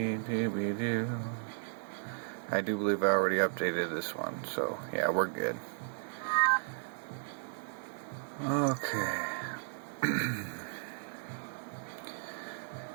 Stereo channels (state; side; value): silent; left; 55 dB below the other